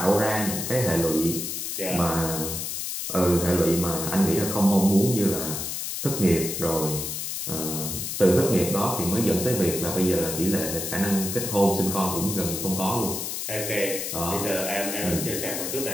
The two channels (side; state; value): left; noise; hiss, 4 dB below the sound